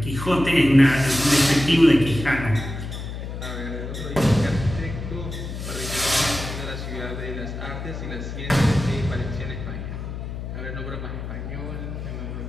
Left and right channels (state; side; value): noise; left; hum, 7 dB below the sound